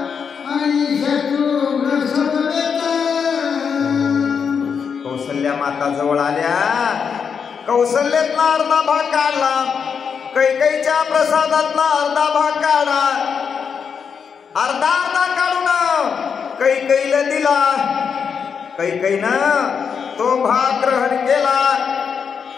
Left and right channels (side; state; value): right; quieter; 6.5 dB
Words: कौसल्या माता जवळ आल्या. कौशल्यातला अर्धा भाग काढला, कैकेयीच्या प्रसादातला अर्धा भाग काढा. अर्धा अर्धा काढून कैकेयीला दिला. कैकेयीनं तो भाग ग्रहण केला.